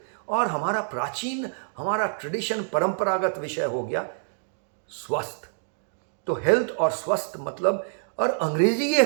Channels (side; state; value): left; silent; digital silence